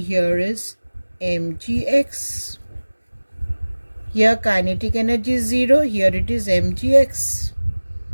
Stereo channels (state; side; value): inverted; both; correlation -1.00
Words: here is mgx. Here kinetic energy is 0, here it is mgx.